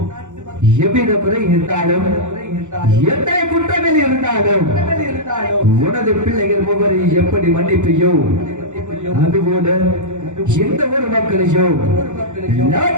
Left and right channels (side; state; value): left; late; 0.85 ms